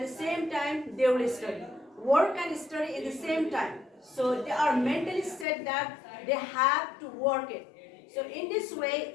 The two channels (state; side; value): drops out; right; at 5.5 s